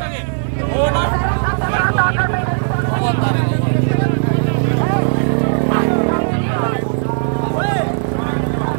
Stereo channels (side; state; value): left; silent; digital silence